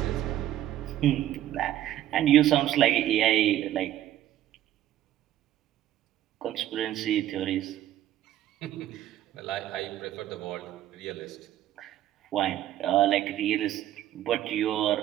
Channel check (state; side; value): quieter; left; 12.7 dB